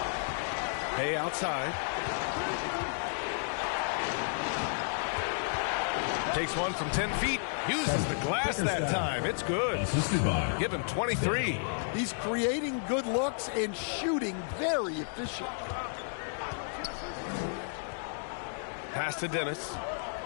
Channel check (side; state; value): right; silent; digital silence